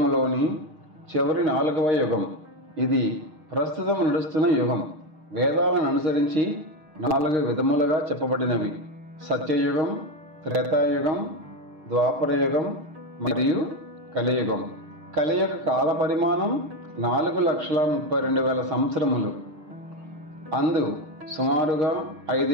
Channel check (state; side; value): late; left; 6.5 ms